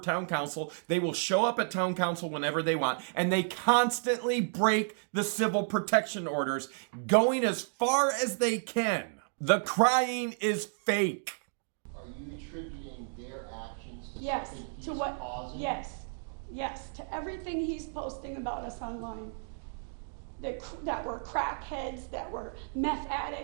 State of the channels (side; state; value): left; silent; digital silence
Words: council. They will show up at town council whenever they want, and they constantly break the civil protection orders, going as far as they can. The crying is fake. are you attributing their actions to Yes, something to he's what- causing? Yes, to everything he's posting about us online. That were crackheads, that were meth